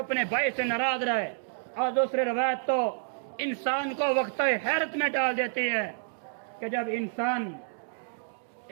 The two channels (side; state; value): left; silent; digital silence